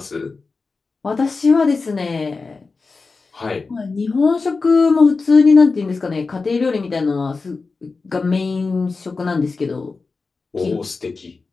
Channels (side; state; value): right; quieter; 4.2 dB